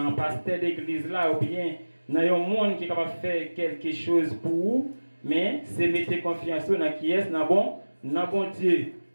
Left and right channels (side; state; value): both; inverted; correlation -1.00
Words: pasteur d'église là, ou bien dans un monde qui est capable de faire quelque chose pour vous, mais c'est mettre confiance dans qui est-ce dans bon Dieu.